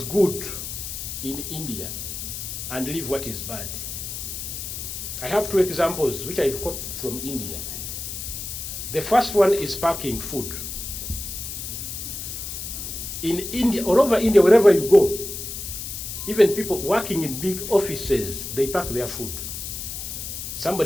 good in India and leave what is bad. I have two examples which I've copied from India. The first one is packing food. In India, all over India, wherever you go, even people working in big offices, they pack their food.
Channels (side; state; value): left; noise; hiss, 7 dB below the sound